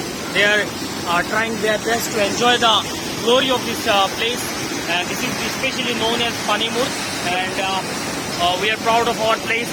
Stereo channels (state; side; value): identical; both; correlation 1.00